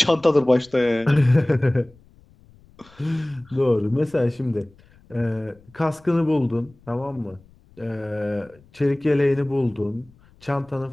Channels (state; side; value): noise; left; rumble, 28 dB below the sound